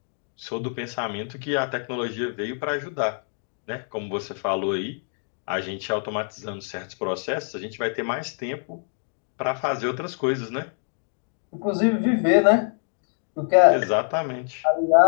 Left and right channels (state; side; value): silent; right; 62 dB below the other